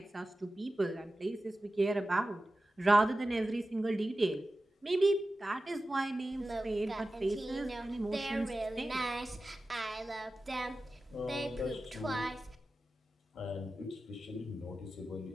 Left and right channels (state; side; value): normal; both; correlation 0.94